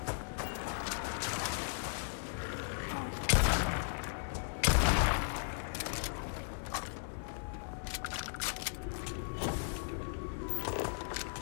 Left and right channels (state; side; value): silent; right; 53 dB below the other